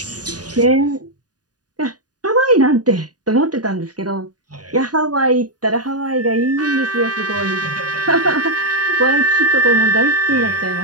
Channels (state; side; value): late; left; 0.68 ms